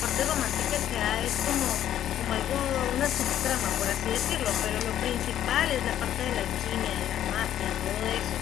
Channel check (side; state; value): right; quieter; 11.2 dB